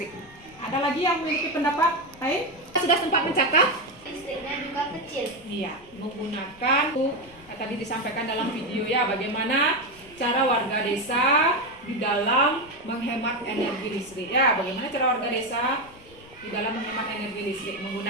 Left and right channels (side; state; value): left; noise; rumble, 24 dB below the sound